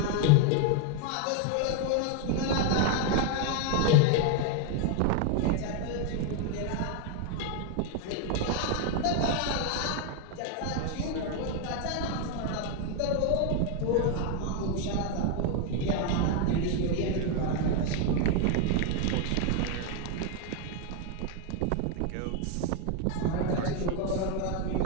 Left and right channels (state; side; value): different; both; correlation 0.01